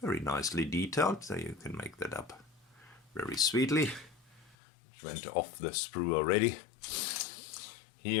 very nicely detailed, so you can make that up very sweetly. Which went off the sprue already.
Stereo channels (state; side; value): drops out; right; at 4.5 s